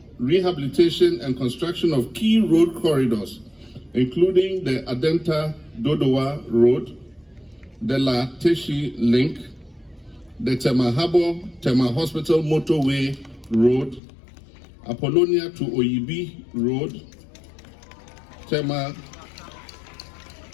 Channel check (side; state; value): right; drops out; at 14.0 s